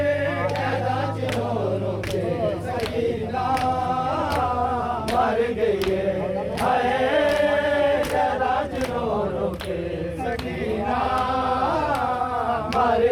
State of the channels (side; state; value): both; identical; correlation 1.00